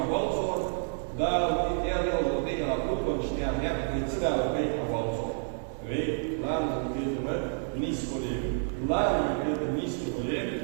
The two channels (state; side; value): silent; left; digital silence